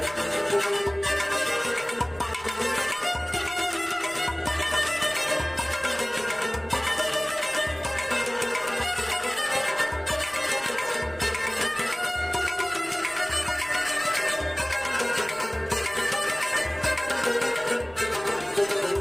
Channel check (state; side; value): noise; right; rumble, 23 dB below the sound